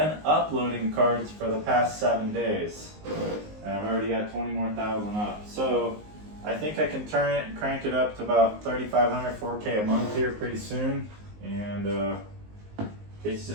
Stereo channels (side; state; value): left; late; 19 ms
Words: uploading cards for the past 7 days. And I've already got 20 more thousand up. So I think I can turn it and crank it up to about 3,500, 4K a month here pretty soon. And it's